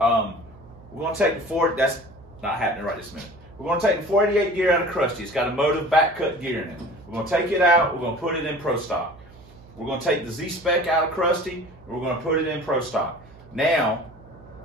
going to take the that's not happening right this minute. We're going to take the 488 gear out of Krusty. It's got a motive back cut gear in it. We're going to take it out. We're going to put it in Pro Stock. We're going to take the Z spec out of Krusty, and we're going to put it in Pro Stock. Now,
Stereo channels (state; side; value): noise; right; hum, 23 dB below the sound